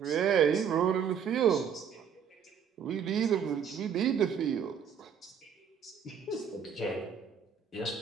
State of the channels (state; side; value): quieter; left; 7.5 dB